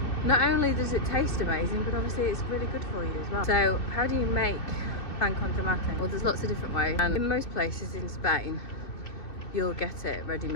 Not only does it taste amazing, but obviously it's really good for you as well. So how do you make pan con tomate? Well, there's lots of different ways, and in most places in Spain you'll get it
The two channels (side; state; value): right; late; 2.7 ms